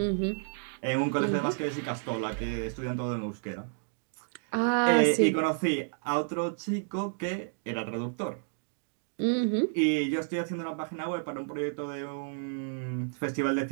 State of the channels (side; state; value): left; silent; digital silence